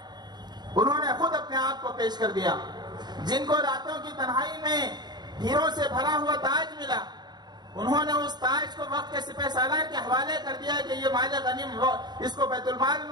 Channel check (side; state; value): left; late; 0.20 ms